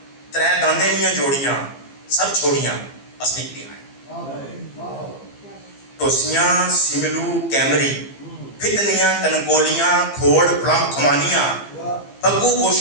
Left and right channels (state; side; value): late; right; 15 ms